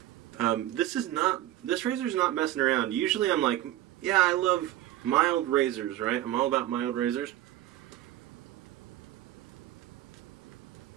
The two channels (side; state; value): left; quieter; 14.2 dB